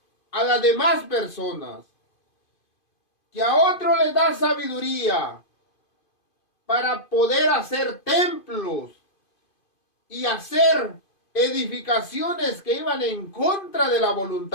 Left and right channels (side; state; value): right; late; 2.5 ms